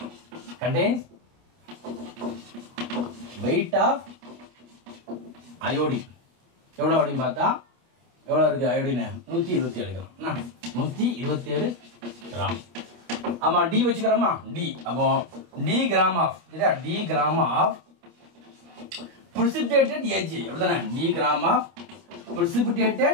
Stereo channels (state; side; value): late; left; 26 ms